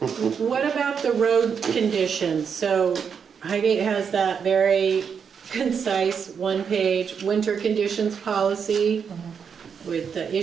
What about the road conditions? So Highgate has that very concise 1-page winter conditions policy with the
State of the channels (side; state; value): left; quieter; 6.8 dB